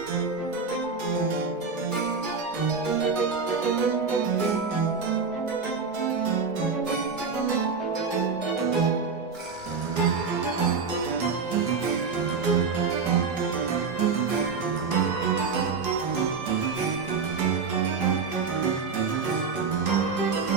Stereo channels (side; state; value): left; quieter; 5.2 dB